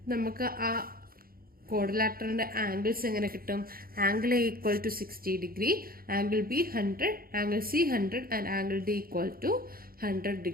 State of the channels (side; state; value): left; late; 0.43 ms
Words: നമുക്ക് ആ ക്വാഡ്രിലാറ്ററലിന്റെ ആംഗിൾസ് എങ്ങനെ കിട്ടും? Angle A equal to 60 degree, angle B 100, angle C 100 and angle D equal to 100